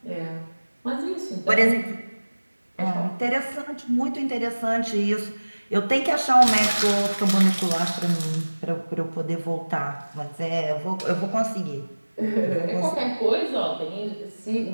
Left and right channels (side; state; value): both; inverted; correlation -1.00